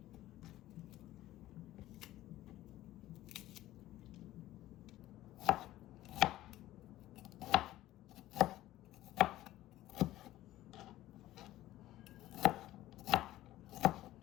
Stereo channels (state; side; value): quieter; right; 15.2 dB